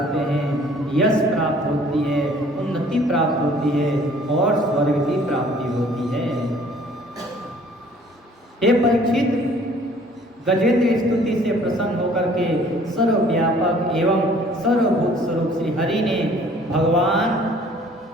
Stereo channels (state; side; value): normal; both; correlation 0.55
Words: हैं, यश प्राप्त होती है, उन्नति प्राप्त होती है और स्वर्ग की प्राप्ति होती है। हे परीक्षित, गजेंद्र स्तुति से प्रसन्न होकर के सर्वव्यापक एवं सर्वभूत स्वरूप श्री हरि ने भगवान